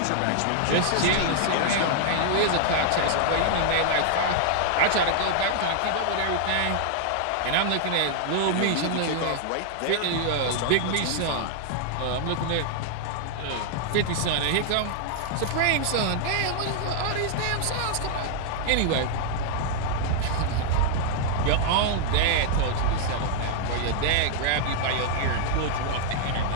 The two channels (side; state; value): both; different; correlation -0.01